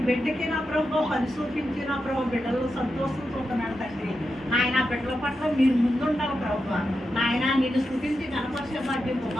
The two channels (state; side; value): normal; both; correlation 0.88